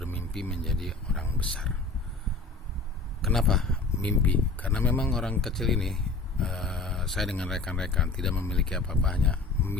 menjadi orang besar. Kenapa mimpi? Karena memang orang kecil ini, saya dengan rekan-rekan tidak memiliki apa-apa, hanya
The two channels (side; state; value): right; quieter; 3.8 dB